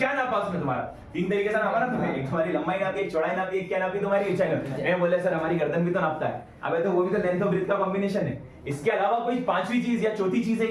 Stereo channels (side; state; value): both; identical; correlation 1.00